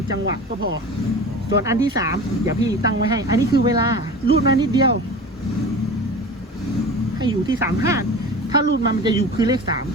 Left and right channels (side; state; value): both; normal; correlation 0.35